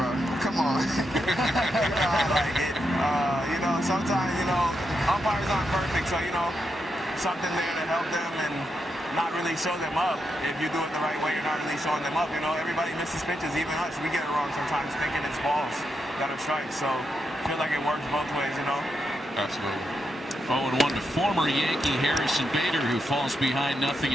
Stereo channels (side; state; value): both; normal; correlation 0.84